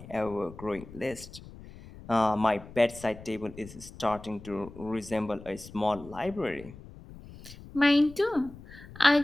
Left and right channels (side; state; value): left; noise; rumble, 17 dB below the sound